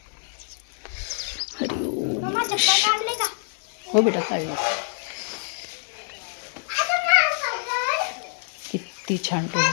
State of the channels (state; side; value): silent; right; digital silence